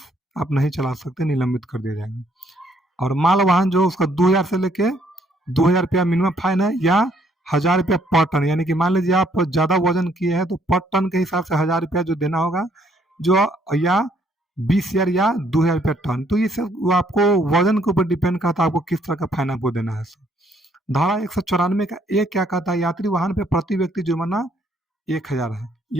आप नहीं चला सकते, निलंबित कर दिया जाएगा। और माल वाहन जो उसका 2000 से लेके 2000 रुपया मिनिमम फाइन है या 1000 रुपया पर टन, यानी कि मान लीजिए आप ज़्यादा वजन किए हैं तो पर टन के हिसाब से 1000 रुपया जो देना होगा, जो या 20,000 या 2000 रुपया टन। तो ये सब वो आपको वजन के ऊपर डिपेंड करता है आपको किस तरह का फाइन आपको देना है। धारा 194 का एक क्या कहता है, यात्री वाहन पे प्रति व्यक्ति जुर्माना 1000 है,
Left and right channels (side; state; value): both; normal; correlation 0.67